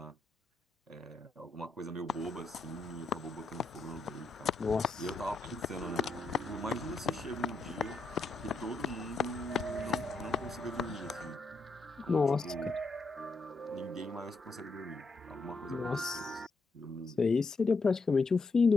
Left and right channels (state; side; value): quieter; right; 3.5 dB